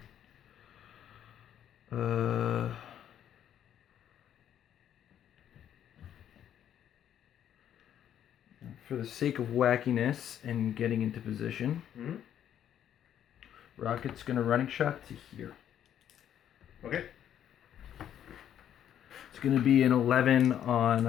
For the sake of wackiness and getting into position, Rocket's gonna running shot to here. Okay. It's gonna be an 11 on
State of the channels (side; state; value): right; quieter; 10.1 dB